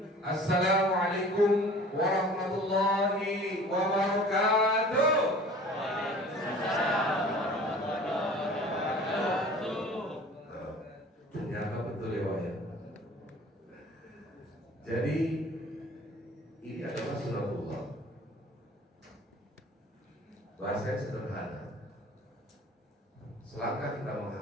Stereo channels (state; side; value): normal; both; correlation 0.45